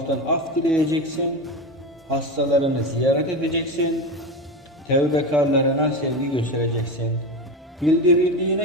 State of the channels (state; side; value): normal; both; correlation 0.21